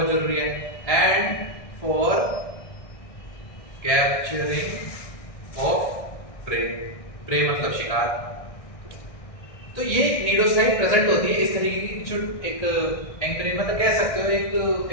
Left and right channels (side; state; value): right; late; 1.6 ms